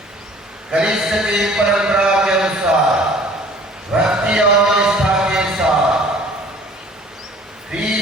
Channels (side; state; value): both; normal; correlation 0.50